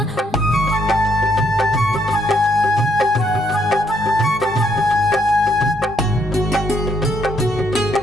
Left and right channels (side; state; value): both; normal; correlation 0.72